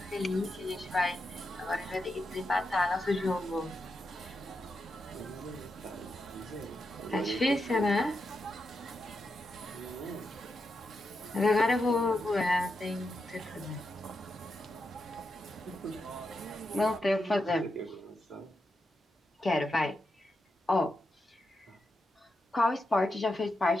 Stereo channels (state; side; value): normal; both; correlation 0.86